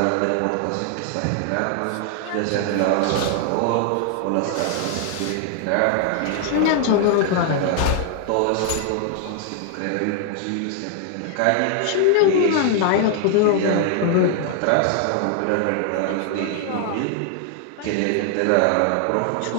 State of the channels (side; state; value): both; different; correlation 0.00